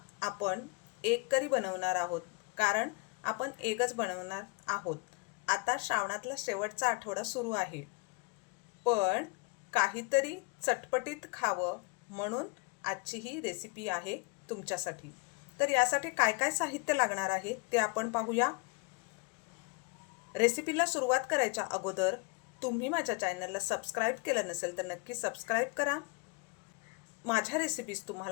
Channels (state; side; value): quieter; right; 31.3 dB